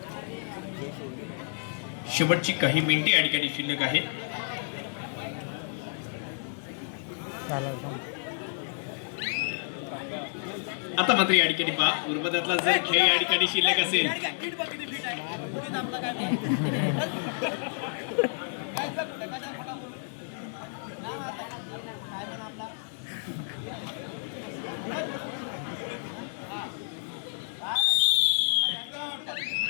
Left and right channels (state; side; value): silent; right; digital silence